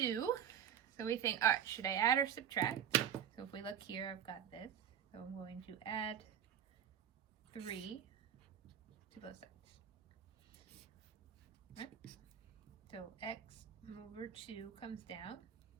so we think, all right, should I add or subtract? So if we look here, I've got this. So I'm going to add 3 to both sides. Right? So x over 2 comes down.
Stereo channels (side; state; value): left; quieter; 9.1 dB